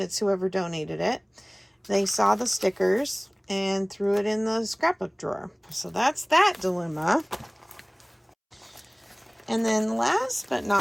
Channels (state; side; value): identical; both; correlation 1.00